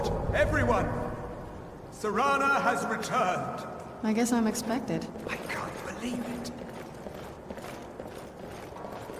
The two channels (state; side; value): identical; both; correlation 1.00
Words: everyone! Serana has returned! I guess I'm expected. I can't believe it.